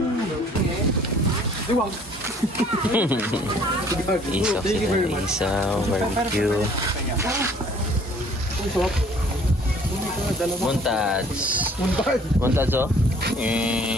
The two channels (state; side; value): normal; both; correlation 0.56